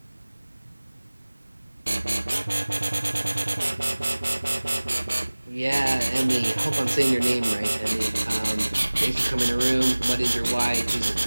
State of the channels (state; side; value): inverted; both; correlation -1.00